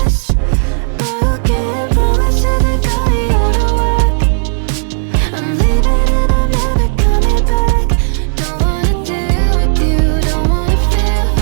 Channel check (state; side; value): silent; left; 67 dB below the other